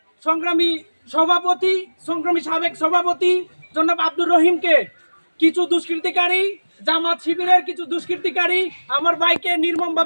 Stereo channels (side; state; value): both; inverted; correlation -1.00